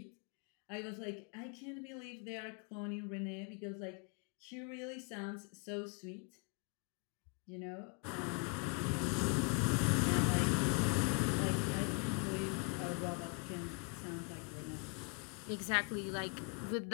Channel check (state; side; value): quieter; right; 36.0 dB